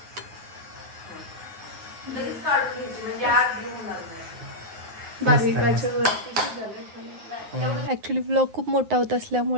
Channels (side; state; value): left; late; 9.6 ms